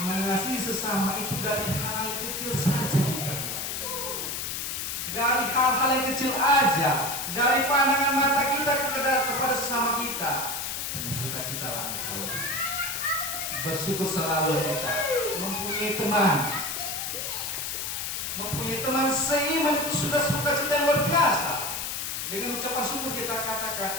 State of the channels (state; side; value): noise; left; hiss, 3 dB below the sound